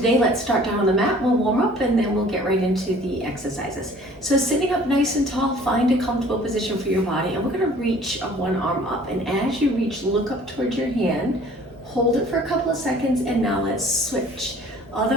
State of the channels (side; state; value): both; normal; correlation 0.51